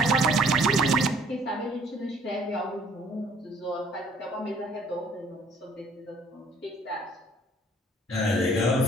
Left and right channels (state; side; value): normal; both; correlation 0.58